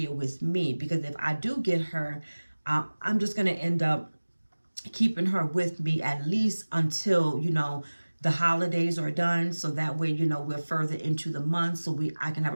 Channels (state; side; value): inverted; both; correlation -1.00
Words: with me. Because if I do get her, I'm just going to end up keeping her with me at least until, the holidays are done. So that way, we're further into the month. So I can have a